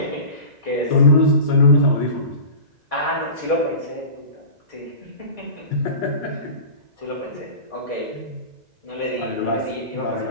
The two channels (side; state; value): left; late; 2.0 ms